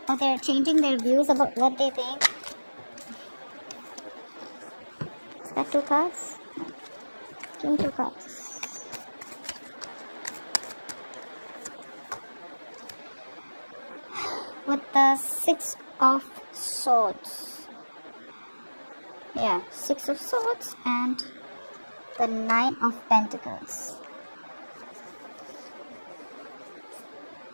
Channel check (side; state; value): both; inverted; correlation -1.00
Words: or they're changing their views about what they think. Is that 2 cards? Give me 2 cards. With the 6 of Swords. Yeah, 6 of Swords and the 9 of Pentacles.